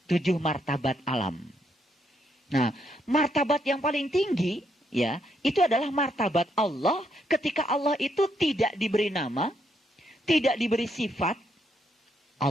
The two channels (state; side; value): normal; both; correlation 0.75